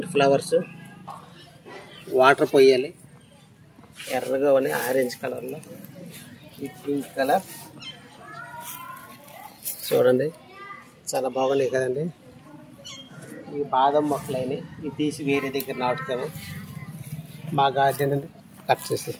ఫ్లవర్స్ వాటర్ పోయాలి. ఎర్రగా ఉన్నాయి, ఆరెంజ్ కలర్లో. ఈ పింక్ కలర్ చూడండి చాలా బాగున్నాయి కదండి. ఈ బాదం మొక్కలు అయినాయి. ఇవి తీసి వేరే దగ్గర నాటుతాము. మా గార్డెన్ కట్ చేసి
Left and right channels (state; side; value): identical; both; correlation 1.00